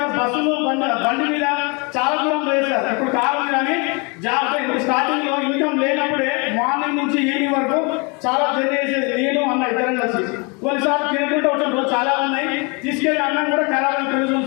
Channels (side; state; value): right; quieter; 31.0 dB